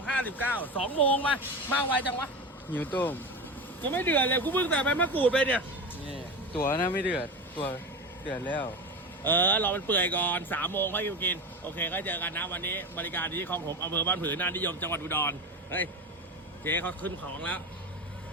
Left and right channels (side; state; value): both; normal; correlation 0.23